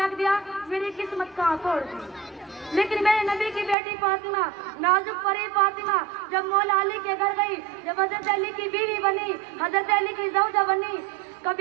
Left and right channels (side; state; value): left; drops out; at 3.8 s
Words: दिया, मेरी किस्मत कहाँ छोड़ दी। लेकिन मेरे नबी की बेटी फातिमा, नाजुक परी फातिमा, जब मौला अली के घर गई, जब हजरत अली की बीवी बनी, हजरत अली की ज़ौजा बनी,